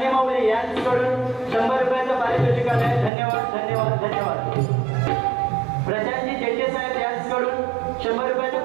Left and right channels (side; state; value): left; drops out; at 3.1 s